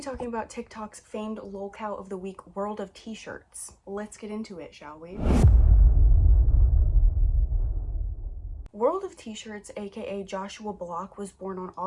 talking about TikTok's famed lolcow of the week, World of T-shirts. Let's get into it, shall we? World of T-shirts, aka Joshua Block, was born on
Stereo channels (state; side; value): identical; both; correlation 1.00